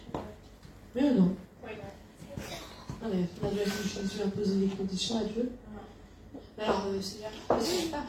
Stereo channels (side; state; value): both; identical; correlation 1.00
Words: Oui ou non? Non, mais on a déjà vu Jésus imposer des conditions à Dieu. Alors,